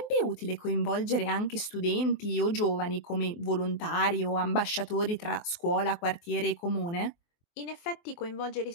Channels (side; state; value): right; late; 23 ms